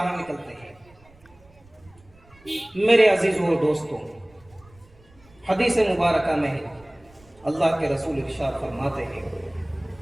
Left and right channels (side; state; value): right; noise; rumble, 27 dB below the sound